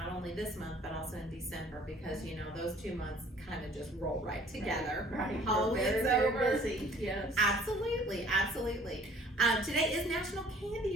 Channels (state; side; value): normal; both; correlation 0.53